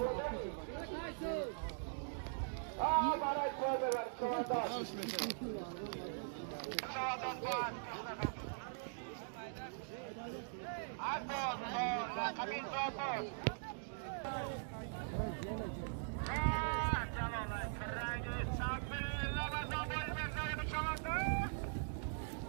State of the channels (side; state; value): left; silent; digital silence